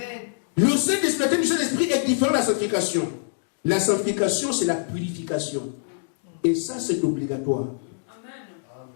Le Saint-Esprit du Saint-Esprit est différent de la sanctification. La sanctification, c'est la purification. Et ça, c'est obligatoire.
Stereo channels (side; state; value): right; silent; digital silence